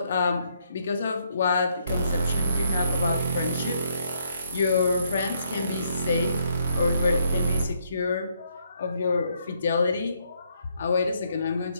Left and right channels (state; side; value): inverted; both; correlation -0.72